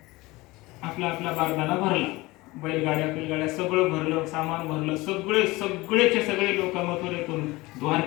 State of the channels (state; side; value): quieter; right; 21.2 dB